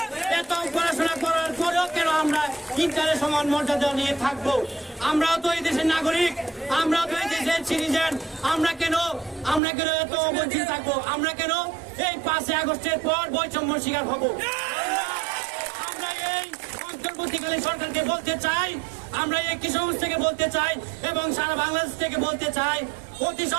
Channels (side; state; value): left; drops out; at 9.6 s